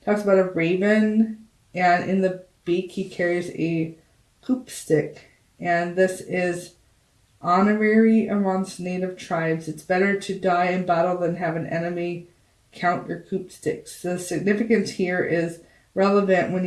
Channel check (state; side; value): identical; both; correlation 1.00